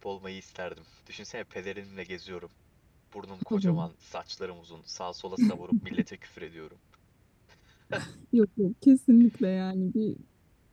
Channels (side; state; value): both; identical; correlation 1.00